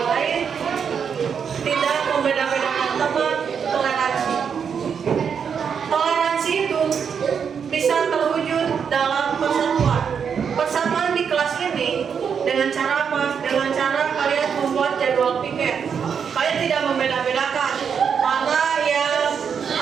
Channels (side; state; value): left; quieter; 7.0 dB